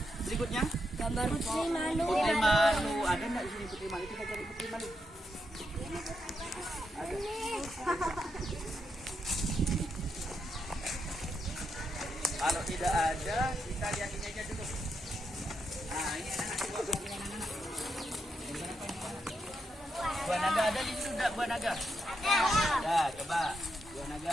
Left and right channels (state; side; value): normal; both; correlation 0.83